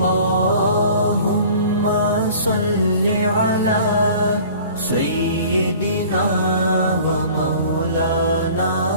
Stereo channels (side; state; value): both; inverted; correlation -0.47